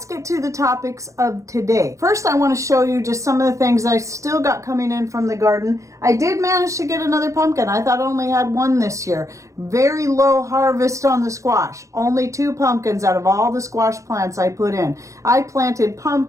get to the topics of today. First, I want to show you just some of the things I still got coming in from the garden. I did manage to get another pumpkin. I thought I only had one this year. Very low harvest on the squash. Only 2 pumpkins out of all the squash plants I put in. I planted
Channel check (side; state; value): left; late; 0.15 ms